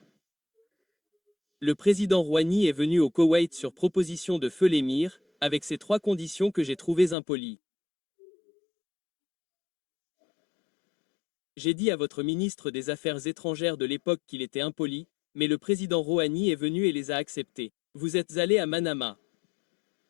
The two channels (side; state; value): right; drops out; at 7.2 s